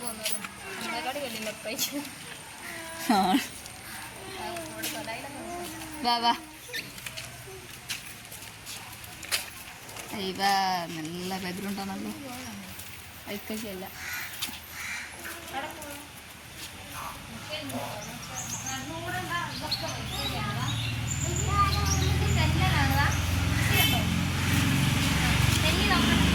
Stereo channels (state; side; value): identical; both; correlation 1.00